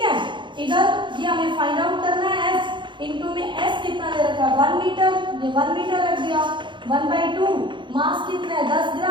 इधर ये हमें फाइंड आउट करना है s, इनटू में s कितना दे रखा है 1 मीटर, ये 1 मीटर रख दिया, 1/2 मास कितना है 10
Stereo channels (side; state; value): left; late; 0.23 ms